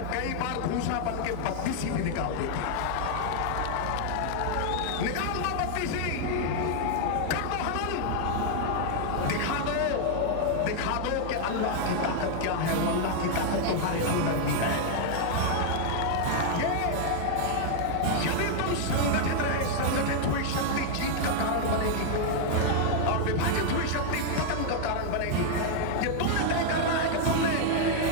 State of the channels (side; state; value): both; different; correlation 0.00